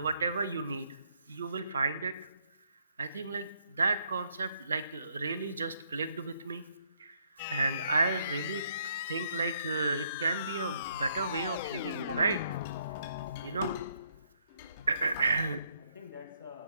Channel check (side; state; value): both; inverted; correlation -0.71